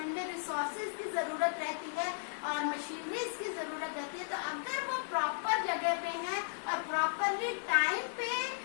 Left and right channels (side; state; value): right; silent; digital silence